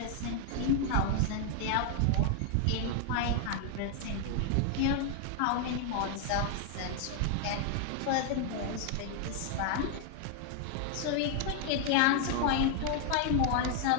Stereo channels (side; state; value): both; different; correlation 0.00